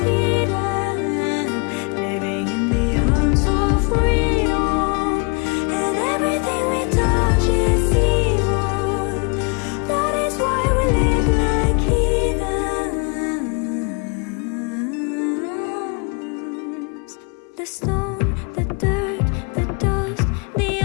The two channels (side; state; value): right; quieter; 33.7 dB